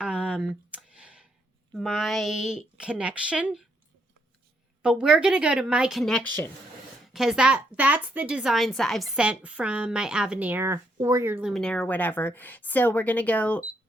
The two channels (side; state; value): both; normal; correlation 0.75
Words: my connection. But we're going to go to my connection. Because that's the designs that I've sent from my Avenir or your Luminaire or whatever. So we're going to go